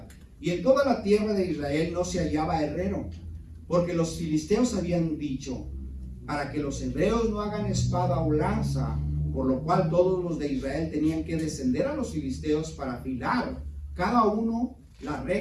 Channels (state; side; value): identical; both; correlation 1.00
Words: y en toda la tierra de Israel no se hallaba herrero, porque los filisteos habían dicho, para que los hebreos no hagan espada o lanza, por lo cual todos los de Israel tenían que descender a los filisteos para afilar cada uno la